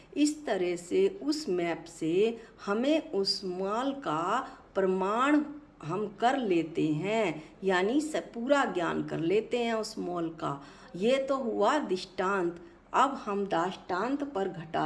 इस तरह से उस मैप से हमें उस मॉल का प्रमाण हम कर लेते हैं, यानी सब पूरा ज्ञान कर लेते हैं उस मॉल का। ये तो हुआ दृष्टांत। अब हम दाष्टान्त पर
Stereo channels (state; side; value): identical; both; correlation 1.00